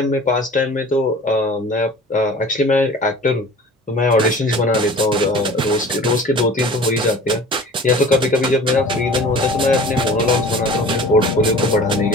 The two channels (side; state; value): both; normal; correlation 0.43